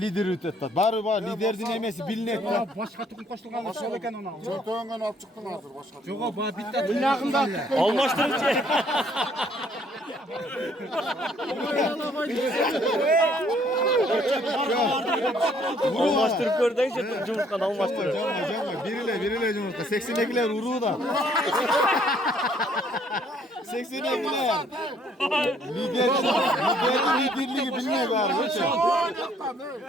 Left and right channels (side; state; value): both; normal; correlation 0.64